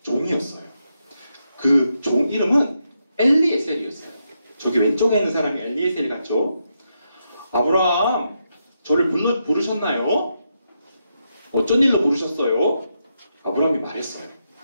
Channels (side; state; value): both; inverted; correlation -0.83